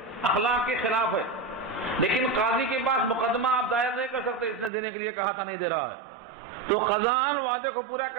اخلاق کے خلاف ہے. لیکن قاضی کے پاس مقدمہ آپ دائر نہیں کر سکتے، اس نے دینے کے لیے کہا تھا نہیں دے رہا ہے. تو قضاءً وعدے کو پورا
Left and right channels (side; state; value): left; drops out; at 4.7 s